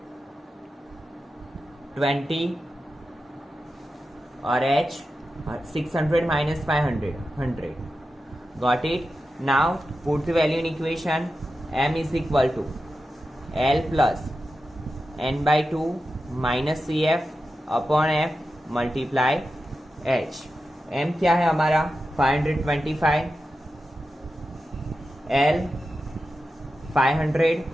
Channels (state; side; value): normal; both; correlation 0.91